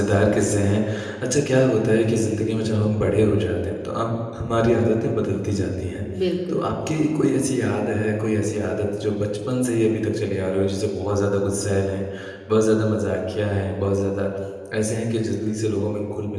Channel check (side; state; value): both; identical; correlation 1.00